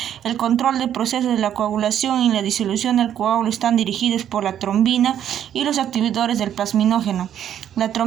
El control del proceso de la coagulación y la disolución del coágulo están dirigidos por la trombina y los activadores del plasminógeno. La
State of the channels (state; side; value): quieter; left; 10.1 dB